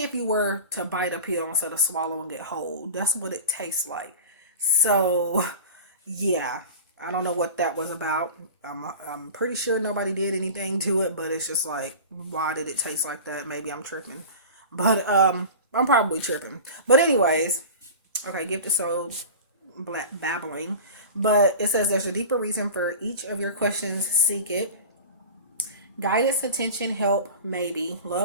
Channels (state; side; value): inverted; both; correlation -0.34